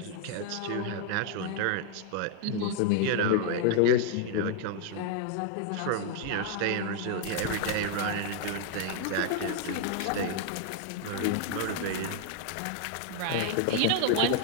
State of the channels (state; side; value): different; both; correlation 0.00